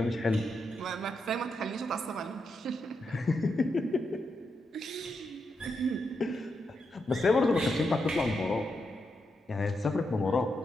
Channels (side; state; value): both; normal; correlation 0.84